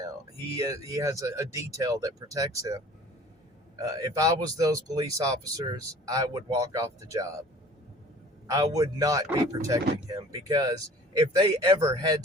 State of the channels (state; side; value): normal; both; correlation 0.48